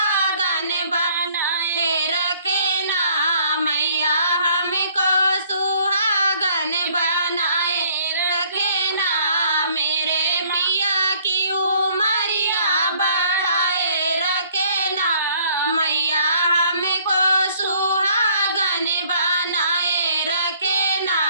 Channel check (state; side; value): inverted; both; correlation -0.60